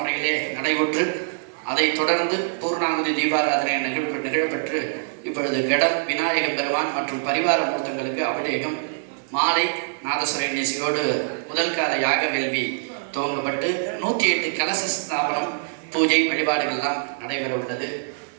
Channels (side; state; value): left; silent; digital silence